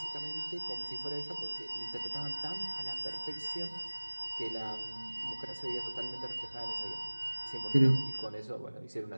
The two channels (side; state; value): both; inverted; correlation -1.00